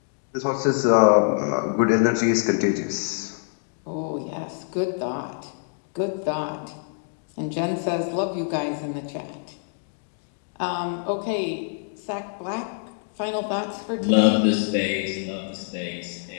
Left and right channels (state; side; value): silent; right; digital silence